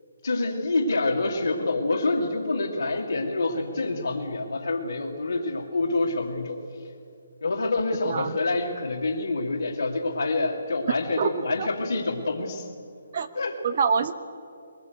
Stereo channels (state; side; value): inverted; both; correlation -0.82